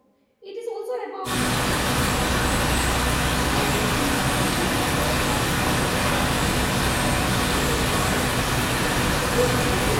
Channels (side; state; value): both; identical; correlation 1.00